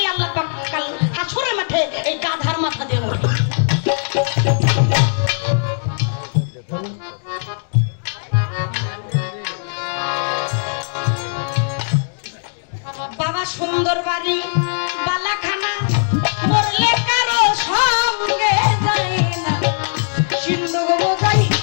আল্লাহ পাক কাল হাসরের মাঠে এই গাধার মাথা দিয়ে মরবে বাবা সুন্দর বাড়ি বালাখানা মরলে কারো সঙ্গে যায় না সিন্ধু বোঝাই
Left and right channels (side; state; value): right; silent; digital silence